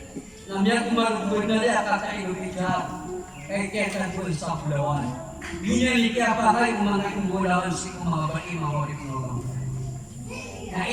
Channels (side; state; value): both; identical; correlation 1.00